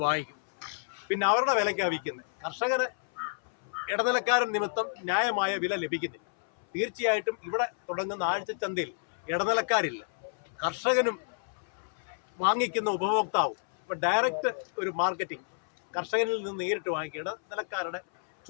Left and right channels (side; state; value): right; silent; 58 dB below the other